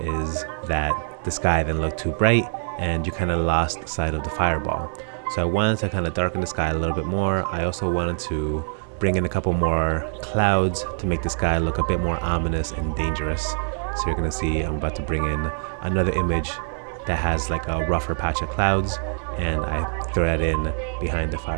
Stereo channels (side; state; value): left; silent; 63 dB below the other